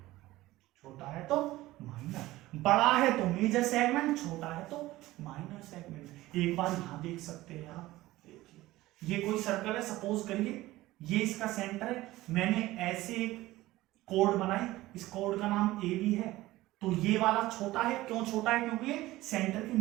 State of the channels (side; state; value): left; quieter; 17.4 dB